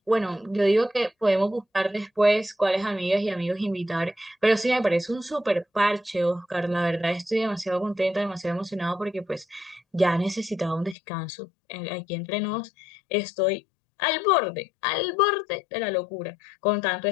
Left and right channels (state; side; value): drops out; right; at 11.0 s